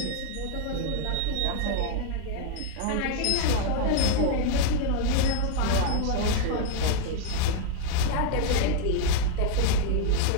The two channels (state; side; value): different; both; correlation 0.00